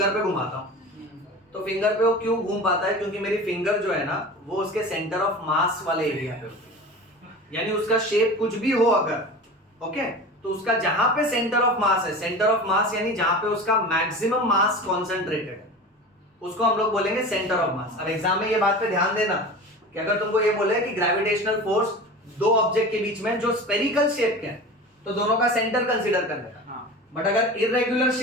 पे घुमाता हूं, तो फिंगर पे वो क्यों घूम पाता है? क्योंकि मेरी फिंगर जो है ना वो उसके सेंटर ऑफ मास वाले एरिया पे होती है, यानी उसका शेप कुछ भी हो अगर, ओके, तो उसका जहां पे सेंटर ऑफ मास है, सेंटर ऑफ मास यानी जहां पे उसका मैक्सिमम मास कॉन्सेंट्रेटेड है, उसको हम लोग बोलेंगे सेंटर ऑफ मास। अब एग्जाम में ये बात पे ध्यान देना कि अगर तुमको ये बोले कि ग्रेविटेशनल फोर्स दो ऑब्जेक्ट के बीच में जो स्पेरिकल शेप के हैं तो दोनों का सेंटर कंसीडर करने का, बट अगर इरेगुलर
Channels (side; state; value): both; normal; correlation 0.33